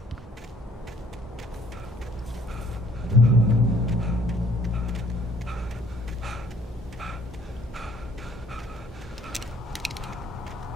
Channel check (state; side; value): normal; both; correlation 0.60